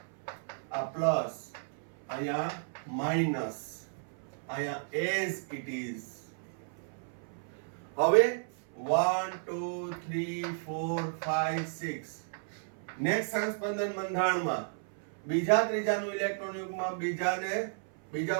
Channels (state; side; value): silent; left; 56 dB below the other